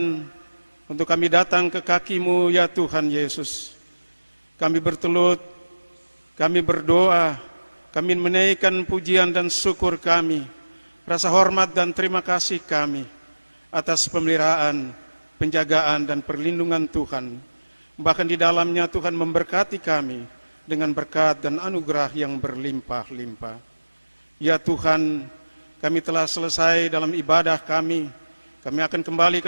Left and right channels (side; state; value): both; inverted; correlation -1.00